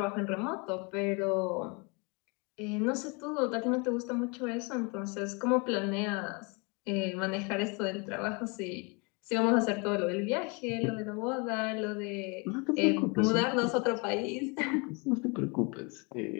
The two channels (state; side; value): quieter; right; 30.9 dB